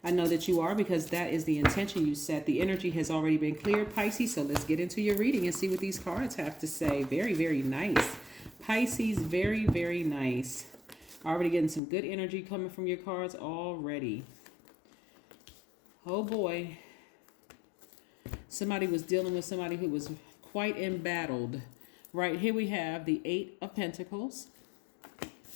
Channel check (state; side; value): drops out; right; at 11.8 s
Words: I know that you are because that is the intention you set. The energy has already been cleared, Pisces. So let's get into your reading and see what these cards have to say. Very, very nice. Pisces, very, very nice. Already getting some good energy coming from your cards already. Oh boy, somebody was dealing with somebody who was quite embattled. Right here we have the Eight of Pentacles.